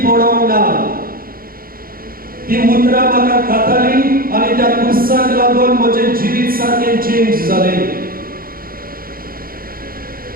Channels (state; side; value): late; left; 0.42 ms